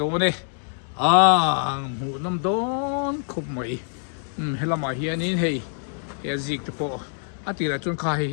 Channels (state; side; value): silent; right; digital silence